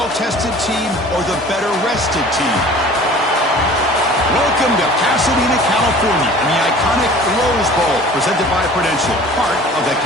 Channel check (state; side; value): normal; both; correlation 0.46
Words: team or the better-rested team? Welcome to Pasadena, California, and the iconic Rose Bowl, presented by Prudential, part of the